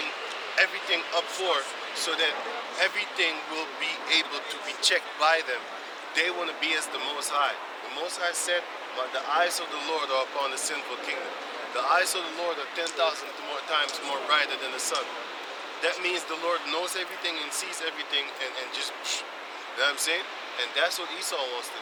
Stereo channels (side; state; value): both; identical; correlation 1.00